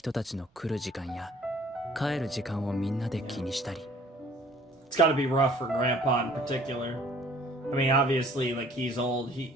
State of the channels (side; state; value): both; normal; correlation 0.55